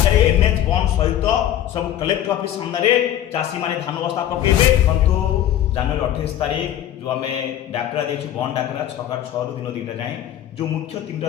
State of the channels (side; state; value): right; quieter; 11.6 dB